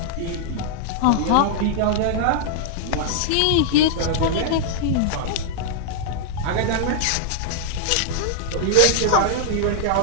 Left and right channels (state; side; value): different; both; correlation -0.01